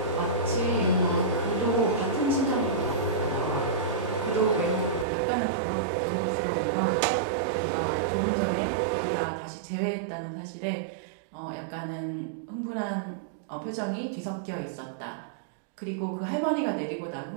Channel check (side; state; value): left; drops out; at 5.1 s